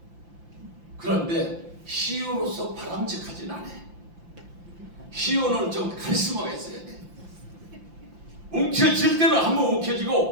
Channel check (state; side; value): late; left; 5.8 ms